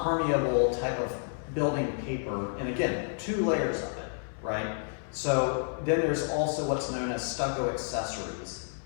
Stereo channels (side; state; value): right; silent; 58 dB below the other